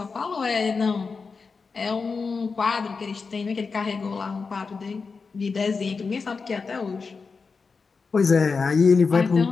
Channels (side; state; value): right; quieter; 4.8 dB